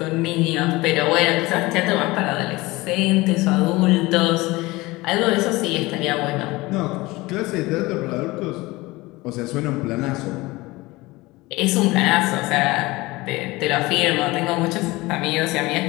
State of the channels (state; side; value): quieter; right; 21.1 dB